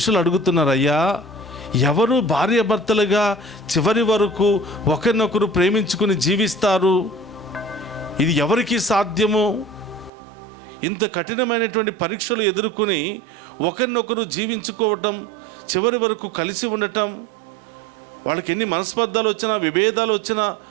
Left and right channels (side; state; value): left; drops out; at 10.1 s